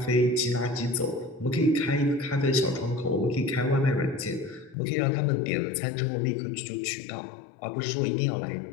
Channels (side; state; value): right; drops out; at 4.8 s